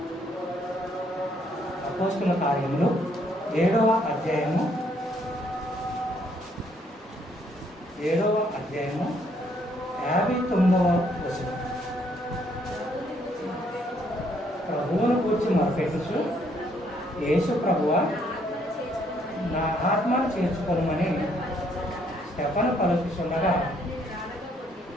7వ అధ్యాయము 59వ వచనం. ప్రభువును కూర్చి మొరపెట్టుచు, యేసు ప్రభువా, నా ఆత్మను చేర్చుకోమని స్టెఫను పలుకుతుండగా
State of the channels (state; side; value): normal; both; correlation 0.69